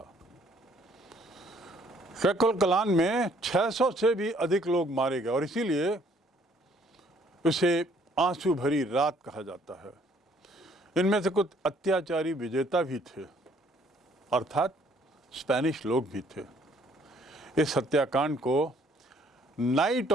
क्वेकलकलान में 600 से भी अधिक लोग मारे गए और इसीलिए उसे आंसू भरी रात कहा जाता है। इनमें से कुछ अत्याचारी विजेता भी थे, अर्थात स्पेनिश लोग भी थे। इस हत्याकांड को नाइट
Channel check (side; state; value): both; normal; correlation 0.62